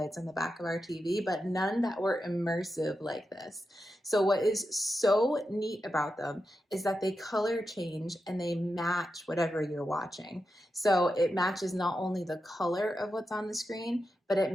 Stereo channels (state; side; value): normal; both; correlation 0.88